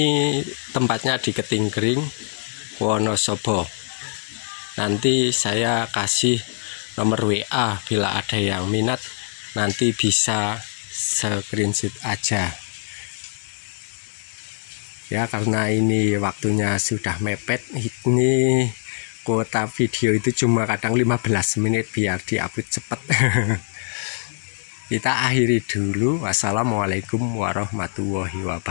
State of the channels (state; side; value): silent; right; 63 dB below the other